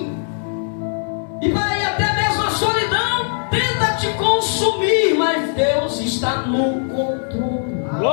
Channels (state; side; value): silent; right; digital silence